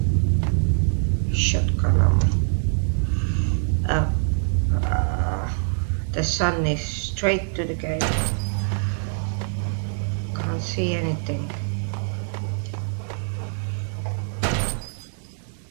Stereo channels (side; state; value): left; silent; digital silence